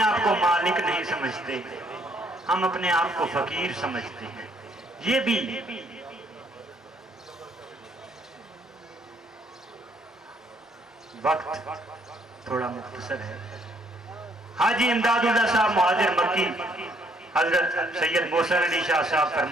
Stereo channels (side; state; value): both; normal; correlation 0.67